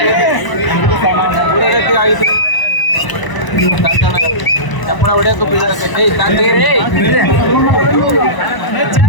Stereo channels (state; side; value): late; right; 1.0 ms